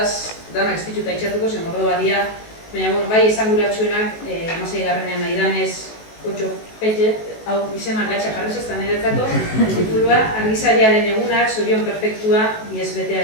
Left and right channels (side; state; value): right; late; 18 ms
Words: danak ez dituta itxatuko, zen mordo badia, baina bai esanguratsuenak, 16. nahi danez, 8 petxe, hau izena gatxa jarri zestan niretzako, titulua, Argizariaren egunak, Zorion perfektua, ISBT